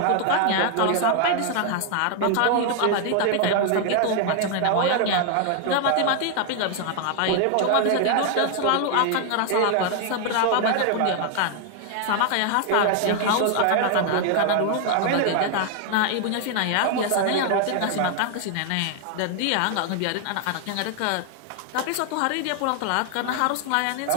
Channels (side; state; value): both; different; correlation 0.00